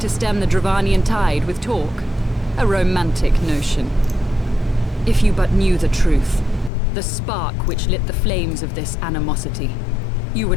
stem the Dravanian tide with talk? A romantic notion. If you but knew the truth, the spark which lit the flames of this animosity, you would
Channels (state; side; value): drops out; right; at 6.7 s